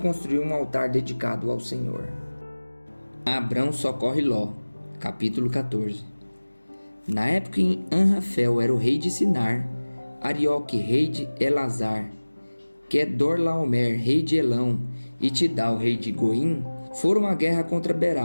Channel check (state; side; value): inverted; both; correlation -1.00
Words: um altar dedicado ao Senhor. Abrão socorre Ló, capítulo 14. Na época em Anrafel era o rei de Sinar, Arioque, rei de Elazar, Quedorlaomer, rei de Elão, e Tidal, rei de Goim, foram à guerra contra